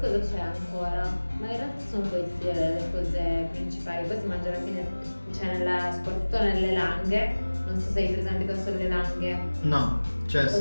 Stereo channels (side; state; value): both; inverted; correlation -1.00